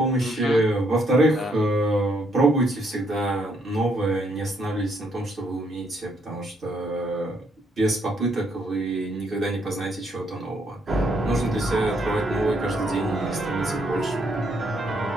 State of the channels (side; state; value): both; normal; correlation 0.72